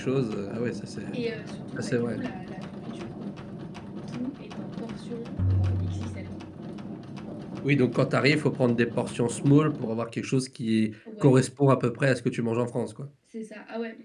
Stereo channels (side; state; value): both; identical; correlation 1.00